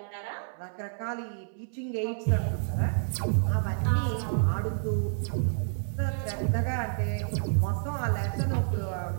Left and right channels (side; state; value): left; silent; 58 dB below the other